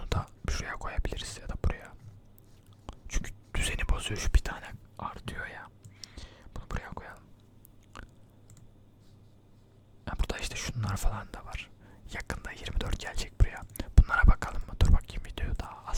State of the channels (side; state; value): both; identical; correlation 1.00